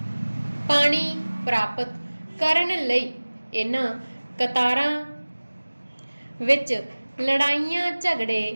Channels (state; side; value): inverted; both; correlation -1.00